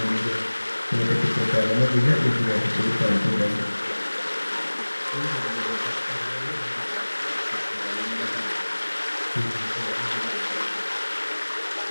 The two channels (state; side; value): inverted; both; correlation -1.00